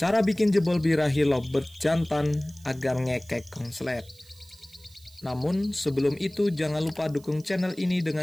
cara bikin jebol birahi lovebird jantan agar ngekek konslet. Namun, sebelum itu jangan lupa dukung channel ini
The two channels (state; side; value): noise; right; hiss, 26 dB below the sound